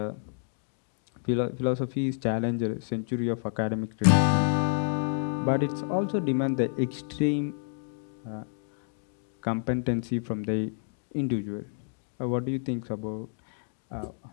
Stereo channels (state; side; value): silent; right; digital silence